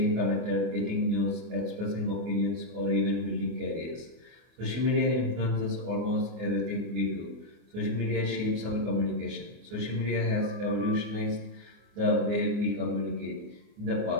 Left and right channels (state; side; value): late; left; 24 ms